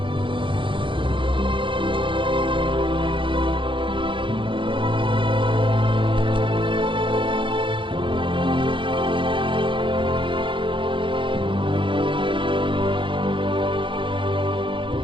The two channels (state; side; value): late; left; 0.24 ms